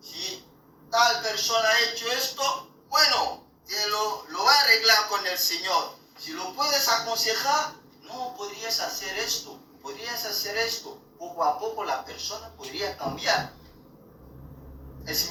si tal persona ha hecho esto, bueno, te lo va a arreglar con el Señor. Si lo puedes aconsejar, no, podrías hacer esto. Poco a poco la persona podría cambiar. Es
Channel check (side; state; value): both; identical; correlation 1.00